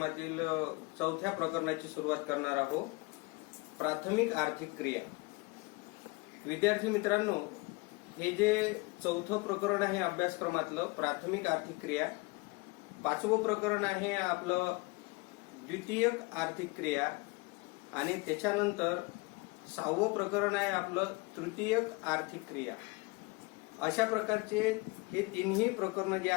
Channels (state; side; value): quieter; right; 26.0 dB